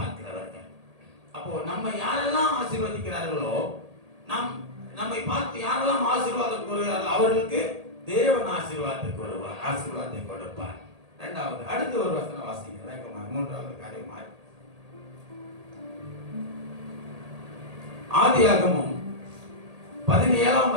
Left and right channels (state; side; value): late; left; 1.8 ms